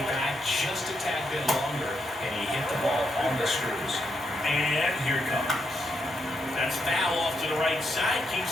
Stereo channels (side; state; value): both; normal; correlation 0.80